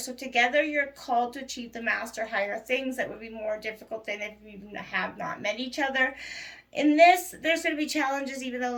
together you're called to achieve the master higher things that would be more difficult than if you have not met each other. In this, there's going to be challenges, even though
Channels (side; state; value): both; identical; correlation 1.00